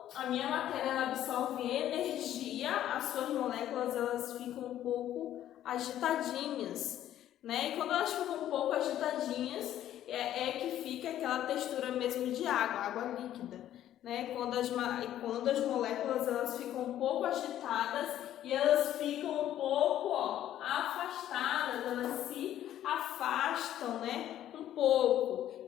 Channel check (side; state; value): right; quieter; 12.0 dB